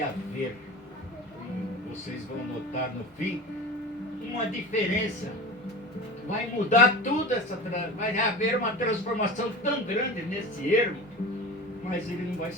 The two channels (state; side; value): normal; both; correlation 0.32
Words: haver, vocês vão notar no fim, uma diferença. Vai mudar tudo vai haver uma transformação tão grande nesse ermo, mas ele não vai